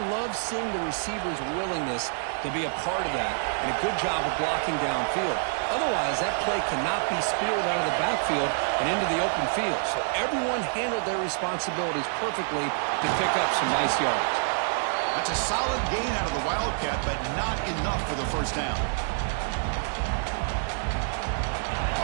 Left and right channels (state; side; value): silent; left; digital silence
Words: love seeing the receiver's willingness to be a part of that and a good job of blocking downfield. Otherwise, that play cannot be spilled out of the backfield and into the open field. So everyone handled their responsibilities perfectly to pick up some nice yards. That's a solid gain out of the Wildcat, but not enough for the first down.